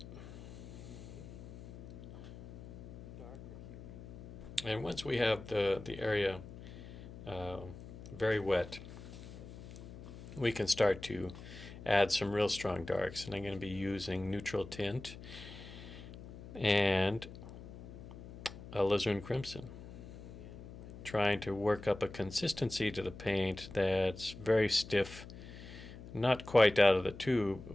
And once we have the area very wet, we can start to add some real strong darks. And I'm going to be using neutral tint and alizarin crimson, trying to work up a consistency to the paint that's very stiff, not quite out of the tube,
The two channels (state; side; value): noise; left; hum, 14 dB below the sound